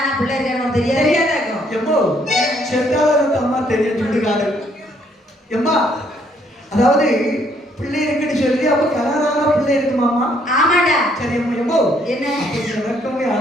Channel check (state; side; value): normal; both; correlation 0.67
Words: பிள்ளை இருக்கான்னு தெரியாது. தெரியாதாக்கும். எம்மோ செத்தாலும் அம்மா தெரிய சொல்லுகாரு. எம்மா அதாவது பிள்ளை இருக்குன்னு சொல்லி அப்ப கல்யாணம் பிள்ளை இருக்குமாமா? ஆமாடா. சரி அம்மா. எம்மோ என்ன? எனக்குமே